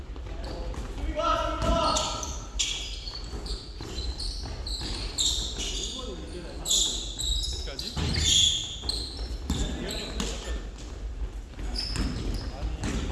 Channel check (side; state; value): both; identical; correlation 1.00